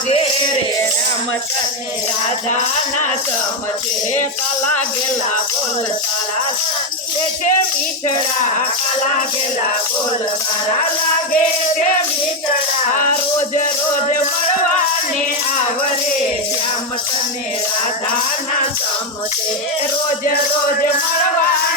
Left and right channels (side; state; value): both; normal; correlation 0.06